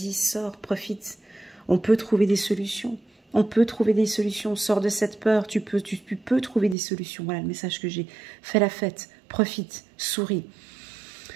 sors, profite. On peut trouver des solutions. On peut trouver des solutions. Sors de cette peur, tu peux trouver des solutions. Voilà le message que j'ai. Fais la fête, profite, souris.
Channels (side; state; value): left; drops out; at 6.8 s